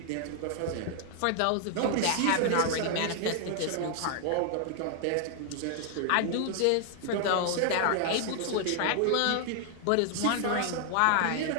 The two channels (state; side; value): different; both; correlation 0.00